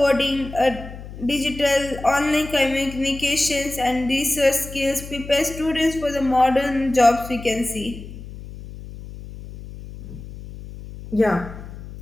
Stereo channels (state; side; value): noise; left; hum, 13 dB below the sound